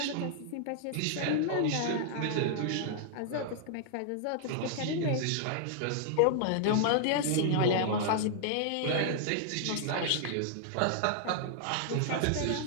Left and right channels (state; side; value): different; both; correlation -0.01